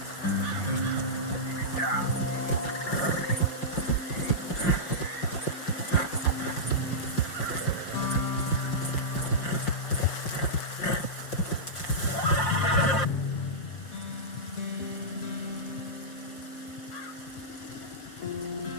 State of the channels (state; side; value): late; right; 5.6 ms